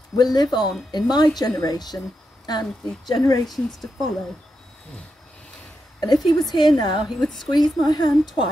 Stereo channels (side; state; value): both; normal; correlation 0.86